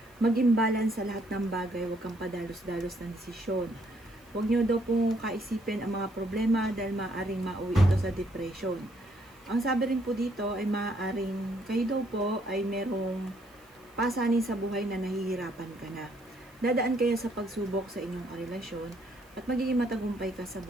maging balance sa lahat ng bagay, huwag kang padalos-dalos ng desisyon. Huwag nyo daw pong kaisipin ang mga problema dahil maaaring mauwi ito sa depression. Ang sabi rin po dito ay maaaring kayo daw po ay merong pasanin sa buhay na nahihirapan ka na. Dadaan kayo sa pagsubok sa inyong karelasyon at magiging matagumpay ka sa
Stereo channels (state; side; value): noise; right; hiss, 29 dB below the sound